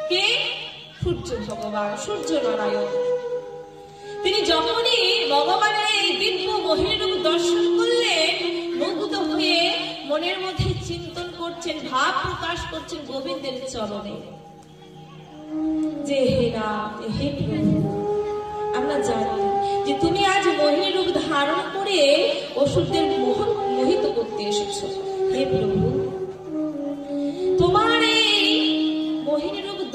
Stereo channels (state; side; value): identical; both; correlation 1.00